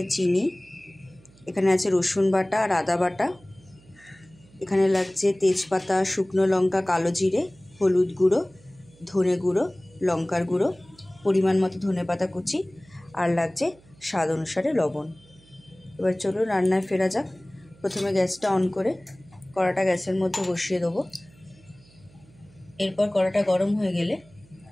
চিনি, এখানে আছে রসুন বাটা আর আদা বাটা, এখানে লাগছে তেজপাতা, শুকনো লঙ্কা, কালো জিরে, হলুদ গুঁড়ো, ধনে গুঁড়ো, লঙ্কার গুঁড়ো, পরিমাণ মতো ধনেপাতা কুচি, আর লাগছে স্বাদ অনুসারে লবণ। এবার চলুন রান্নায় ফেরা যাক। প্রথমে গ্যাসটা অন করে কড়াটা গ্যাসের মধ্যে বসিয়ে দেবো। এরপর কড়াটা গরম হয়ে গেলে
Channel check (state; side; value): noise; right; hum, 27 dB below the sound